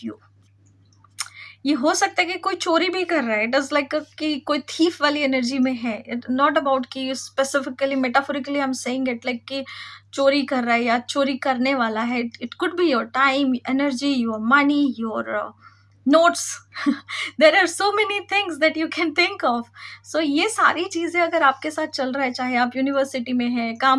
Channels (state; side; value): identical; both; correlation 1.00